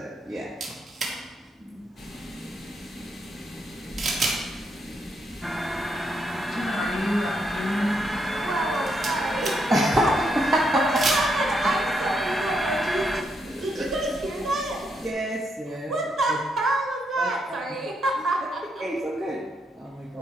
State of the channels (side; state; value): both; normal; correlation 0.78